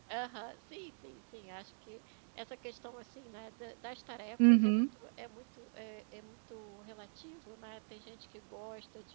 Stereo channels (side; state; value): left; silent; digital silence